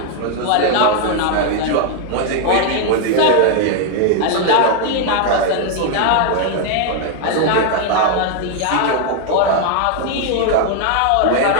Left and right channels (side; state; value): both; different; correlation 0.00